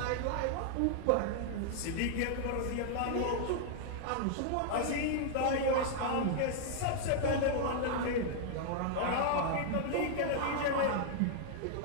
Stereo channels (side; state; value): both; different; correlation -0.01